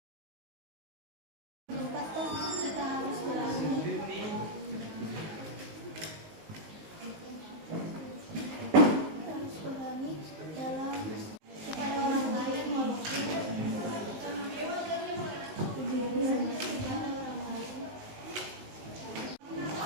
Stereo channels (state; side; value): late; left; 19 ms